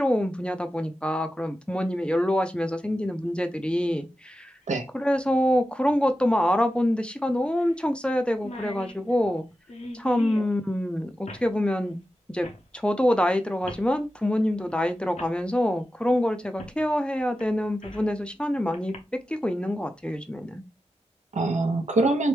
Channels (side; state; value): both; normal; correlation 0.91